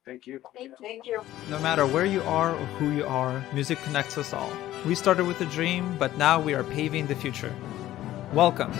Thank you. Thank you. No matter where you are or who you are, music connects us all. We started with a dream, but now we are paving the future. Welcome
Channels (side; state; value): right; quieter; 14.2 dB